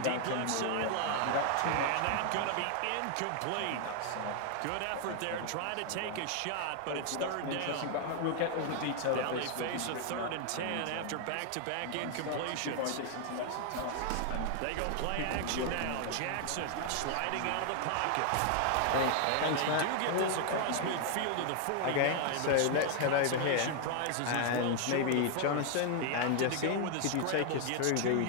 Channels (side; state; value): both; different; correlation 0.00